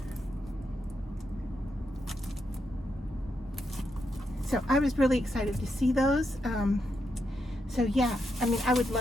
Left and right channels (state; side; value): normal; both; correlation 0.83